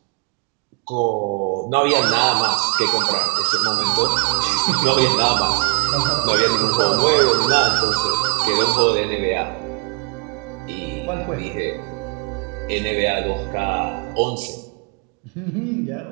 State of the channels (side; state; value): left; quieter; 36.0 dB